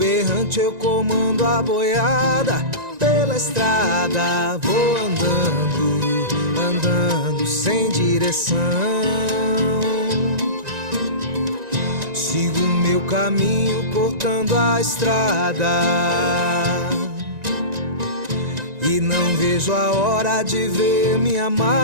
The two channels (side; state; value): left; late; 1.9 ms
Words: eu comando a boiada. Pela estrada vou andando, andando sem direção. Sigo meu caminho cortando a estrada e não vejo a hora de ver minha